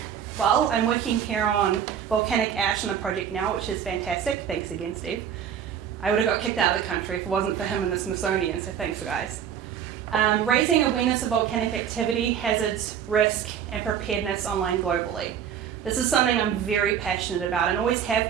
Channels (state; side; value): quieter; left; 8.7 dB